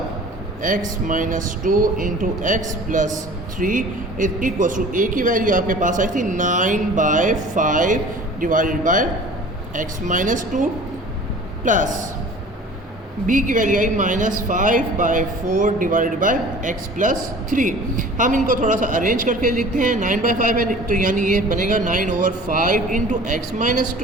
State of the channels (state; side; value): normal; both; correlation 0.44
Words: x minus 2 into x plus 3 is equals to a की वैल्यू आपके पास आई थी 9/5 divided by x minus 2 plus b की वैल्यू आई -5/4 डिवाइडेड बाय x प्लस 3। हम इनको थोड़ा सा अरेंज करके लिखते हैं। 9/5 है तो यानी ये बनेगा 9/5 इंटू एक्स माइनस